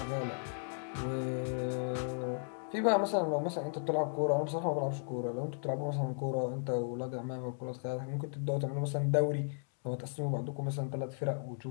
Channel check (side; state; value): right; silent; digital silence